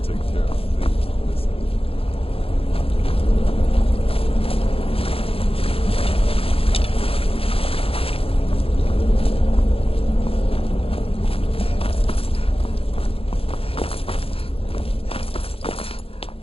take care of things. Listen.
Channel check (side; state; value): right; late; 0.27 ms